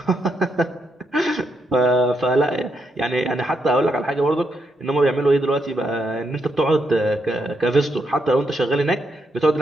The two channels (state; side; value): normal; both; correlation 0.80